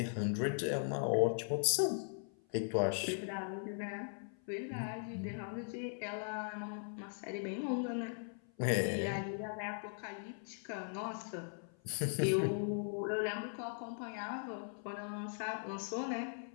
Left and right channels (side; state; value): right; silent; 52 dB below the other